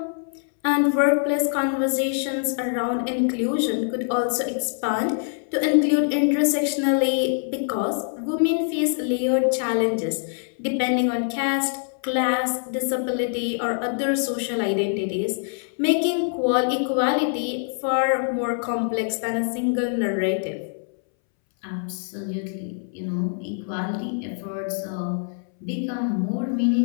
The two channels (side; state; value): right; silent; 62 dB below the other